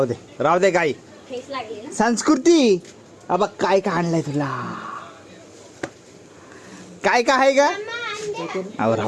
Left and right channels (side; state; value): both; identical; correlation 1.00